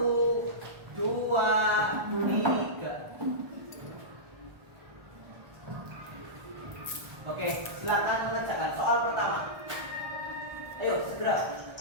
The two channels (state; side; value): late; left; 1.4 ms